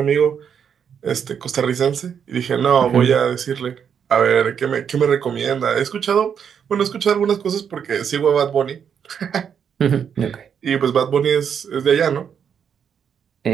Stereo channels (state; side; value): quieter; left; 7.7 dB